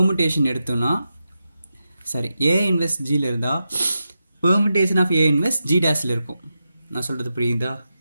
எடுத்தோன்னா ஏ இன்வெர்ஸ் ஜியில் இருந்தால் permutation of A inverse G டேஸில் இருக்கும். நான் சொல்கிறது புரியுதா?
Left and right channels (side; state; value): both; inverted; correlation -0.89